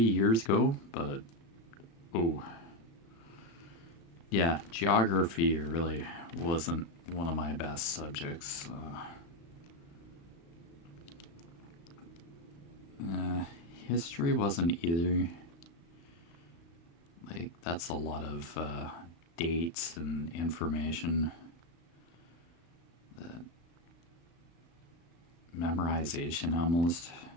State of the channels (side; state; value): right; late; 36 ms